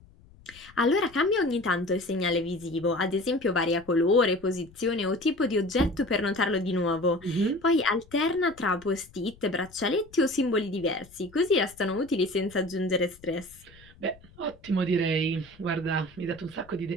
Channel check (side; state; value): left; noise; rumble, 25 dB below the sound